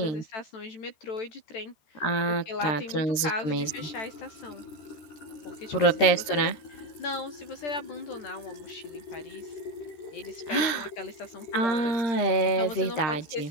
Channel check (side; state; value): right; late; 13 ms